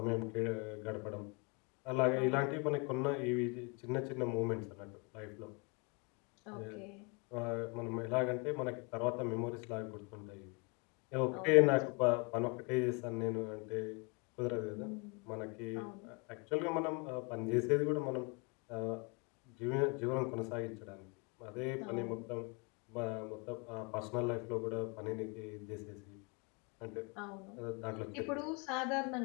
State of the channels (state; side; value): quieter; right; 31.7 dB